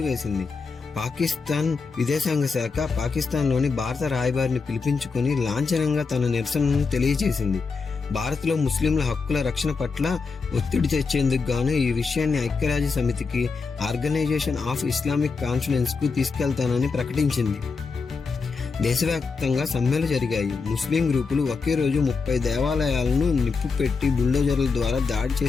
పాకిస్తాన్ విదేశాంగ శాఖ పాకిస్తాన్లోని భారత రాయబారిని పిలిపించుకుని లాంఛనంగా తన నిరసనను తెలియజేసింది. భారత్లో ముస్లింల హక్కుల రక్షణ పట్ల ఒత్తిడి తెచ్చేందుకు గాను ఈ విషయాన్ని ఐక్యరాజ్య సమితికి, ఆర్గనైజేషన్ ఆఫ్ ఇస్లామిక్ కాన్ఫరెన్స్ కు తీసుకెళ్తానని ప్రకటించింది. దేశవ్యాప్తంగా సమ్మెలు జరిగాయి. ముస్లిం గ్రూపులు ఒకే రోజు 30 దేవాలయాలను నిప్పు పెట్టి బుల్డోజర్ల ద్వారా దాడి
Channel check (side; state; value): right; quieter; 4.7 dB